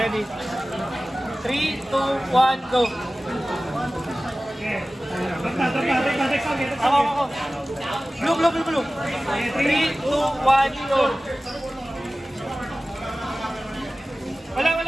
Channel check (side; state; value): both; normal; correlation 0.97